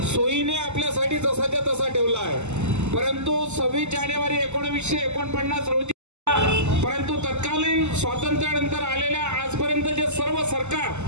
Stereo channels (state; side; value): late; left; 0.83 ms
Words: सोयीने आपल्यासाठी जसाच्या तसा ठेवला आहे. परंतु 26 जानेवारी 1949 रोजी परंतु तत्कालीन स्वातंत्र्यानंतर आलेल्या आजपर्यंतचे सर्व सरकार